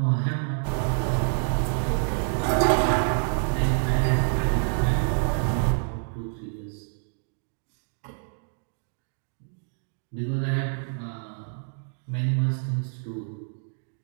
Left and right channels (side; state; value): left; silent; digital silence